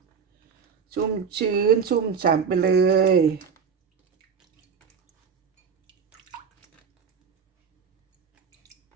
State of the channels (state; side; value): quieter; left; 6.5 dB